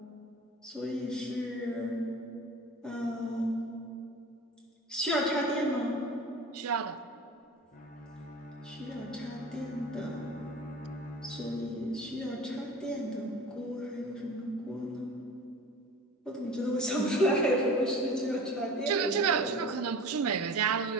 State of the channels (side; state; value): both; normal; correlation 0.38